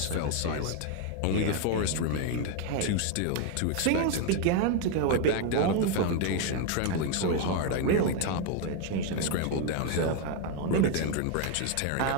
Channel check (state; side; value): different; both; correlation 0.01